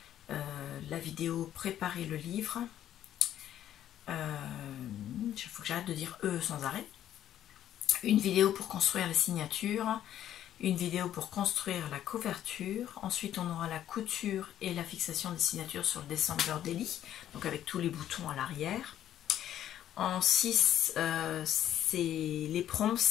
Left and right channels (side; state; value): right; quieter; 11.4 dB